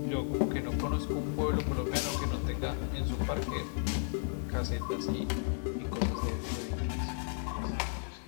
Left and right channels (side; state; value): right; silent; digital silence